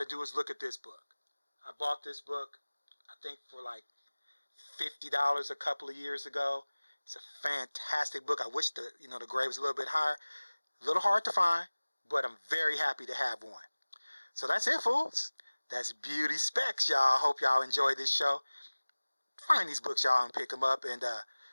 do is look at this book. I bought this book, I think, for like $50 a couple of years ago. It's a fantastic book. I wish the grade was a little bit higher. A little hard to find, but I'm very happy to have one. So that's it, fools. That's Beauty Specs, y'all. Hope y'all enjoy this show. Find these books, y'all, and pick them up. And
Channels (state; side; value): inverted; both; correlation -1.00